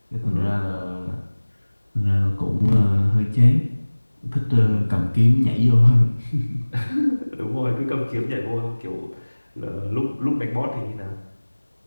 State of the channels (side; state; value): both; inverted; correlation -1.00